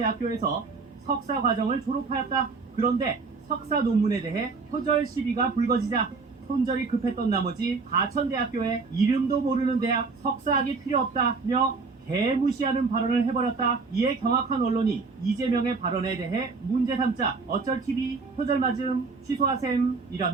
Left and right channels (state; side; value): quieter; left; 4.4 dB